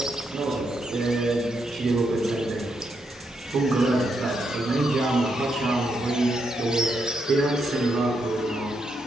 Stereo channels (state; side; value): normal; both; correlation 0.80